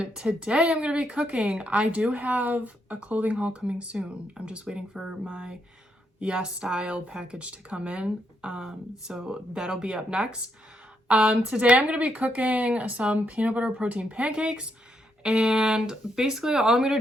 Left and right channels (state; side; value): normal; both; correlation 0.78